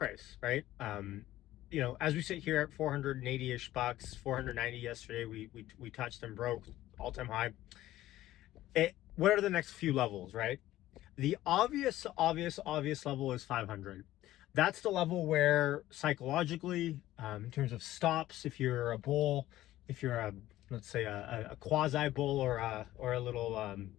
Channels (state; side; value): quieter; right; 14.9 dB